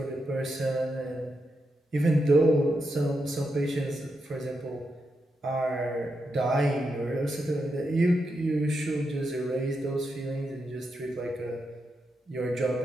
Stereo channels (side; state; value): both; normal; correlation 0.85